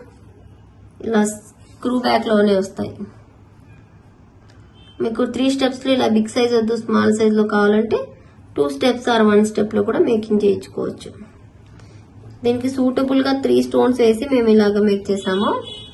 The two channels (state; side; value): identical; both; correlation 1.00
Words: ఇలా స్క్రూ బ్యాక్ లోనే వస్తాయి. మీకు 3 స్టెప్స్ లో ఇలా బిగ్ సైజ్ వద్దు, స్మాల్ సైజ్ లో కావాలంటే 2 స్టెప్స్ ఆర్ 1 స్టెప్ లో కూడా మేకింగ్ చేయించుకోవచ్చు. దీనికి సూటబుల్ గా 3 స్టోన్స్ వేసి మేము ఇలాగా మేక్ చేసాము.